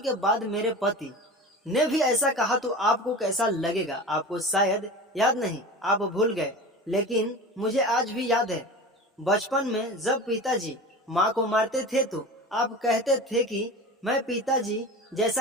बाद मेरे पति ने भी ऐसा कहा तो आपको कैसा लगेगा? आपको शायद याद नहीं, आप भूल गए, लेकिन मुझे आज भी याद है। बचपन में जब पिताजी माँ को मारते थे तो आप कहते थे कि मैं पिताजी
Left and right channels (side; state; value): both; normal; correlation 0.32